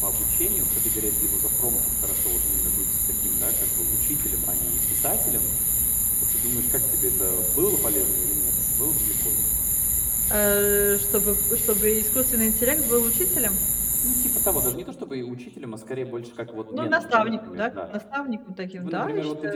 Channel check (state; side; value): identical; both; correlation 1.00